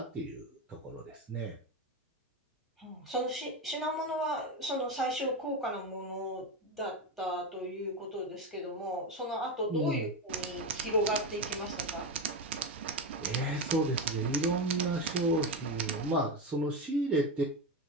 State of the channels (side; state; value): both; normal; correlation 0.15